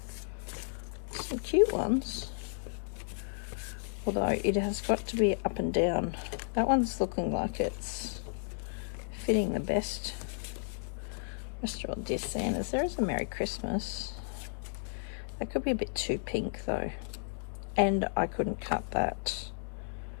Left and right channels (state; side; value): silent; right; digital silence